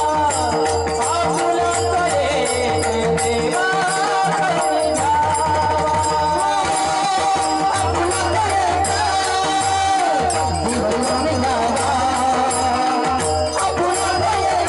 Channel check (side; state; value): both; identical; correlation 1.00